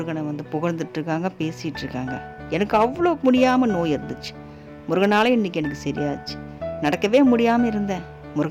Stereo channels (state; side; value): identical; both; correlation 1.00